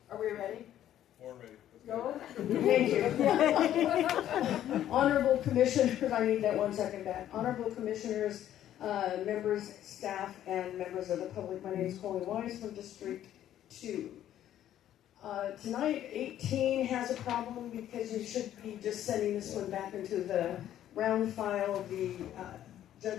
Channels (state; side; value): quieter; right; 11.7 dB